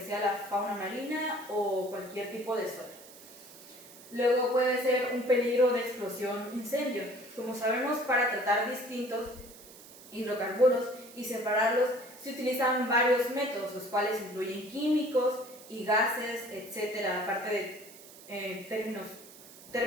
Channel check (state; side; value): noise; right; hiss, 19 dB below the sound